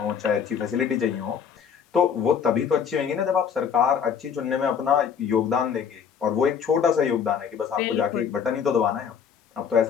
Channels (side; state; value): right; quieter; 7.3 dB